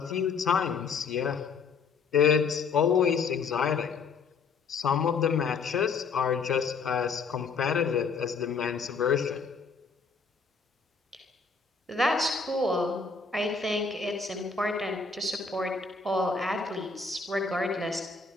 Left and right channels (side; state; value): right; quieter; 5.0 dB